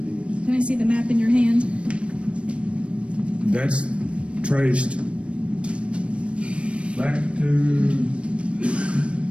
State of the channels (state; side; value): late; left; 0.060 ms